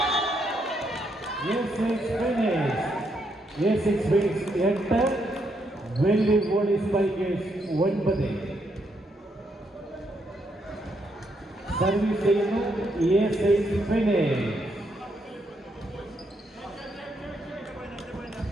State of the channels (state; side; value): normal; both; correlation 0.77